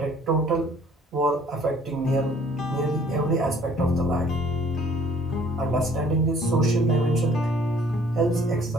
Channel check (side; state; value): both; normal; correlation 0.57